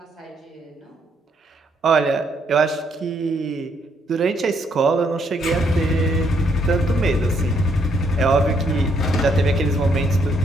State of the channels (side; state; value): both; normal; correlation 0.72